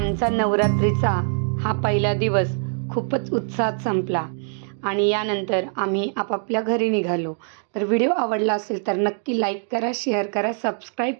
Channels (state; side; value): silent; left; digital silence